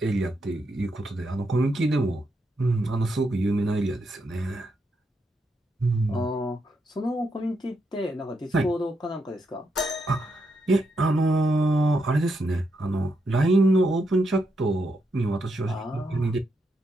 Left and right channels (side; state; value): both; normal; correlation 0.81